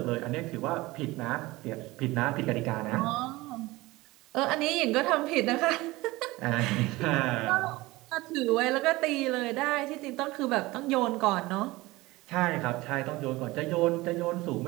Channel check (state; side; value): quieter; left; 20.3 dB